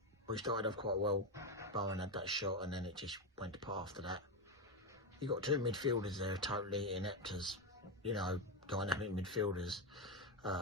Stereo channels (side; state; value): both; normal; correlation 0.09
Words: We started off quite well. Bowen had that shot and then it just went to pot after that. You got two midfielders there totally inept as, you know, dynamic midfielders